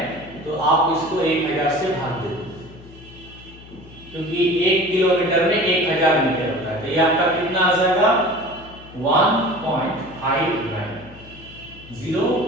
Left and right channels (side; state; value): left; noise; hum, 20 dB below the sound